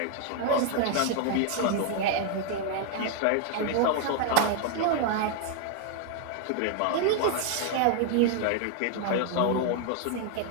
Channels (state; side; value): different; both; correlation 0.00